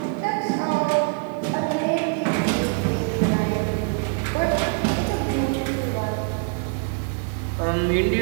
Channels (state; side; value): quieter; left; 35.1 dB